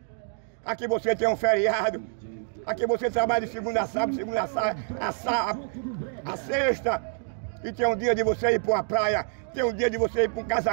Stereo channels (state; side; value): silent; left; digital silence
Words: Aqui você tem um feriado. Aqui você trabalha de segunda a sábado, a sexta. E tem um dia de você ir para uma praia. Tem um dia de você ir para um